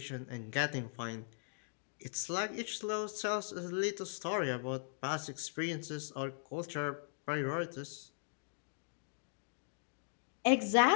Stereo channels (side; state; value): right; silent; digital silence